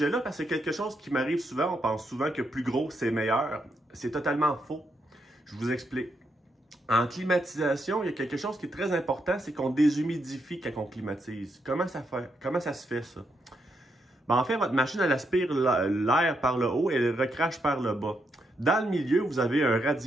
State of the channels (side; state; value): both; normal; correlation 0.80